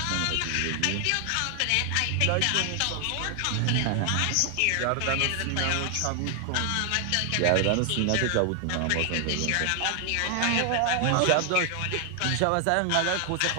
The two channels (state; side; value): different; both; correlation 0.00